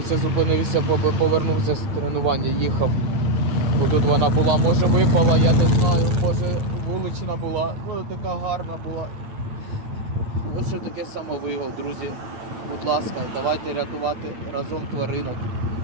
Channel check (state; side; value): late; left; 8.9 ms